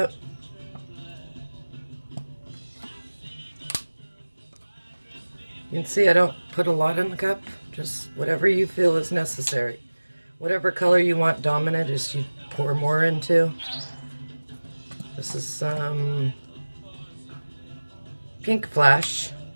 You can see I don't put a lot in the cup, just whatever you feel is necessary. Whatever color you want dominant is you pour more into. This is some pink flash.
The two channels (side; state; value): both; inverted; correlation -1.00